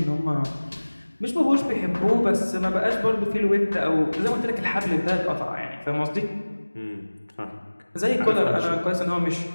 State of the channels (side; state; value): both; inverted; correlation -1.00